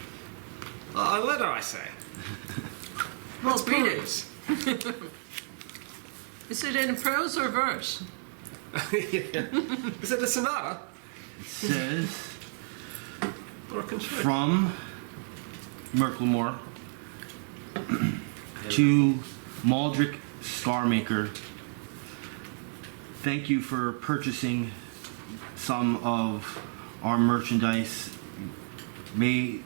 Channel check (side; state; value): left; silent; 57 dB below the other